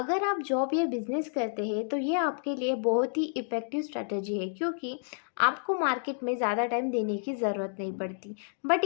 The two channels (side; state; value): right; silent; digital silence